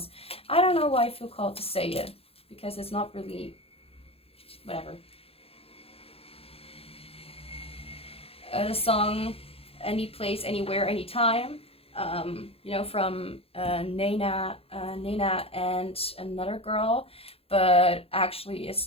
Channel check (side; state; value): right; late; 0.28 ms